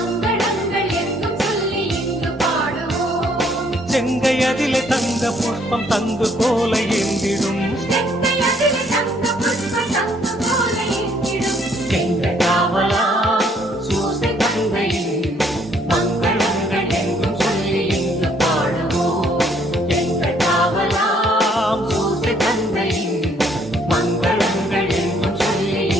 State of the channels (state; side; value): normal; both; correlation 0.65